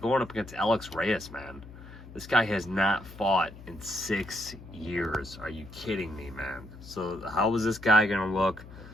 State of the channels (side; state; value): left; noise; hum, 16 dB below the sound